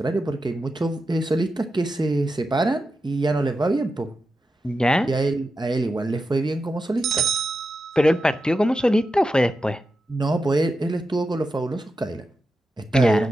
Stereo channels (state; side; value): normal; both; correlation 0.90